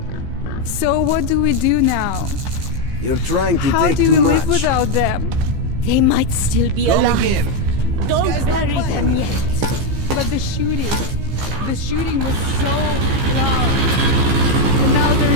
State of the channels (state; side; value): late; left; 15 ms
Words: So what do we do now? You're trying to How take do too we much. live without them? They might still be alive. Again. Don't bury them yet. But the shooting was so loud. And now there